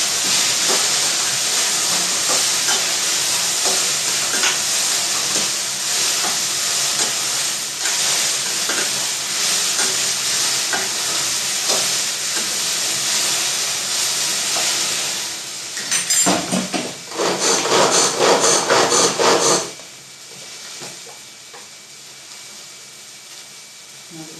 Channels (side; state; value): both; identical; correlation 1.00